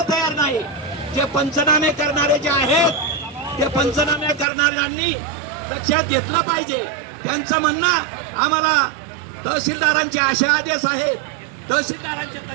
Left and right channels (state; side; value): drops out; left; at 4.5 s